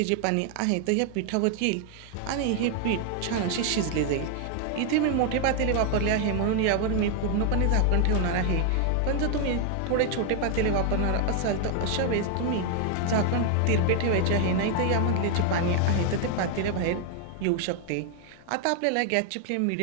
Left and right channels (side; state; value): both; different; correlation 0.00